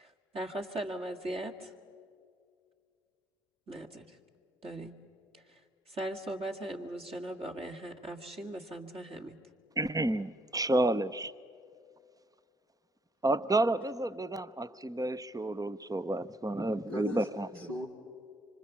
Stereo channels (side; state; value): both; normal; correlation 0.71